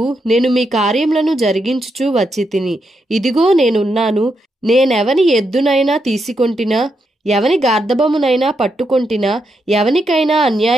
నేను మీ కార్యములను జరిగించుచూ వచ్చితిని. ఇదిగో నేనున్నాను. నేనెవని ఎద్దునైనా తీసుకొంటినా, ఎవని గార్ధబమునైనా పట్టుకొంటినా, ఎవనికైనా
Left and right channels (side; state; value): both; normal; correlation 0.82